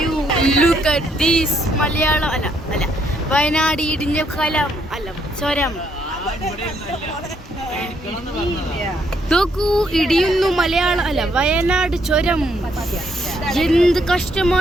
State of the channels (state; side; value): normal; both; correlation 0.72